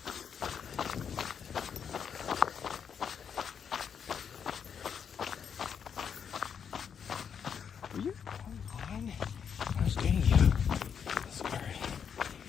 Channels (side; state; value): right; quieter; 7.3 dB